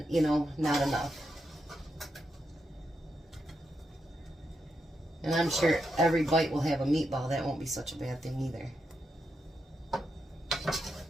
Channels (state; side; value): normal; both; correlation 0.84